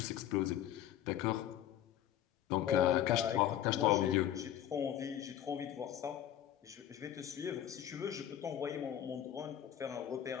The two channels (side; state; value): right; quieter; 11.2 dB